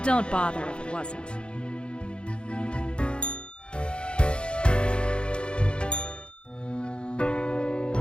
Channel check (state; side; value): late; right; 0.055 ms